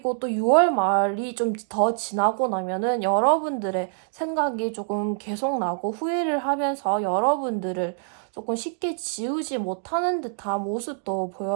또 6월 말이 좀 더 지나고 나면은 여러분들의 생각이 조금 계속 나고 후회를 하면서 여러분들을 조금 쉽게 지우지 못하는 듯한 모습도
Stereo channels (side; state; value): left; silent; digital silence